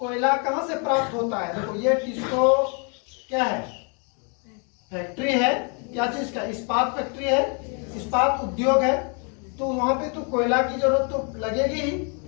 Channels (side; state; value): right; quieter; 37.7 dB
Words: कहां से प्राप्त होता है? देखो ये टिस्को क्या है? फैक्ट्री है। क्या चीज का? इस्पात फैक्ट्री है, इस्पात उद्योग है। तो वहां पे तो कोयला की जरूरत तो लगेगी ही,